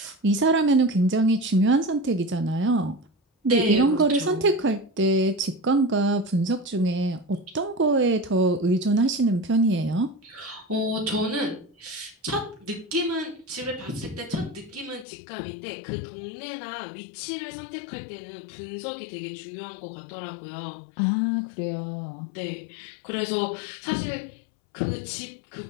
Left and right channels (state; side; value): drops out; right; at 15.1 s